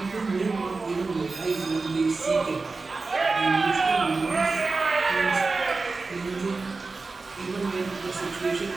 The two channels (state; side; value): quieter; left; 3.9 dB